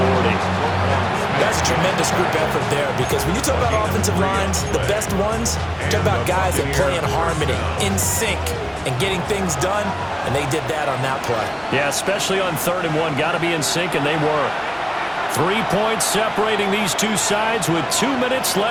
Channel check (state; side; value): identical; both; correlation 1.00